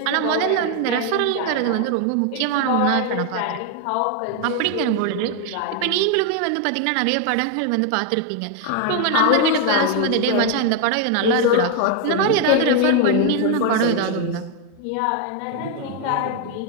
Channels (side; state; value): both; different; correlation 0.01